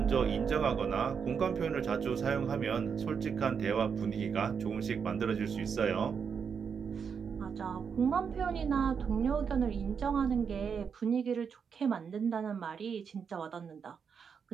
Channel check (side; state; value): left; quieter; 6.6 dB